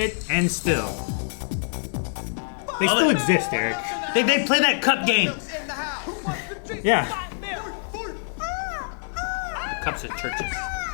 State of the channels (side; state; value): right; silent; 62 dB below the other